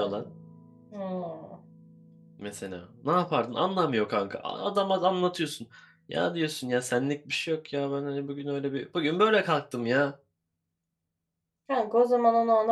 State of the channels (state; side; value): identical; both; correlation 1.00